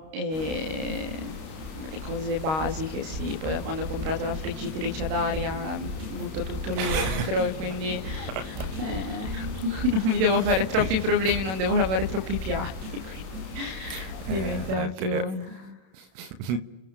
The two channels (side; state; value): left; late; 32 ms